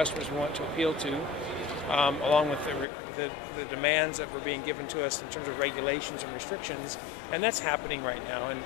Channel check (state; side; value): drops out; right; at 2.9 s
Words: we want to appeal to, along with the demands that were being given to us in terms of regulations and restrictions. And that's happening right now. And